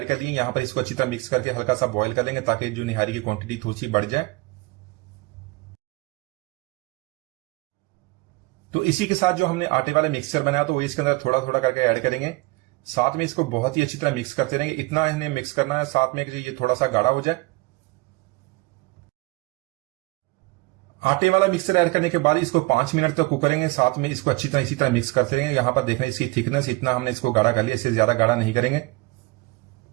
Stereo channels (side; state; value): left; quieter; 23.7 dB